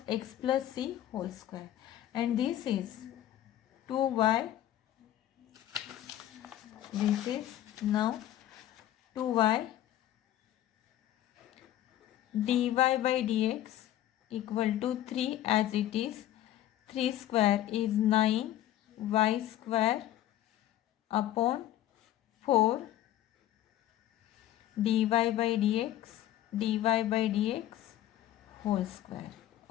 x plus c whole square, and this is 2y. This is now 2y dy by dx equal to 3, as it is 3 square is 9 y square upon 4 dy by dx whole square.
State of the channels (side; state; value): right; quieter; 12.9 dB